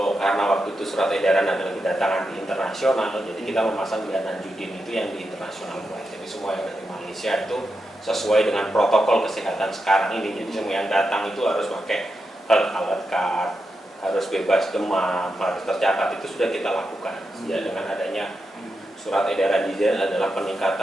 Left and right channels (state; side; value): normal; both; correlation 0.87